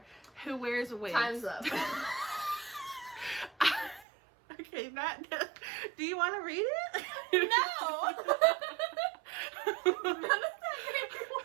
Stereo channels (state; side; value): drops out; left; at 4.0 s